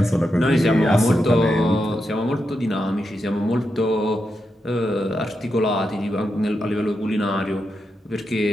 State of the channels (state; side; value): normal; both; correlation 0.86